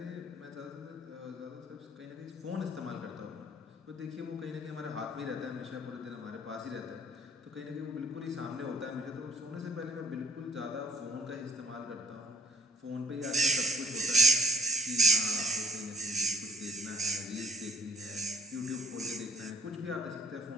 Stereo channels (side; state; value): both; normal; correlation 0.56